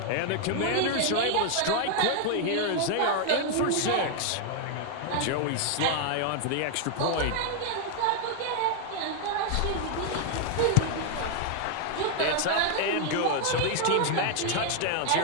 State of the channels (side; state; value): both; different; correlation 0.00